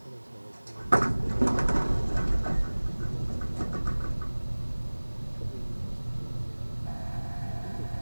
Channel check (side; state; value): both; inverted; correlation -1.00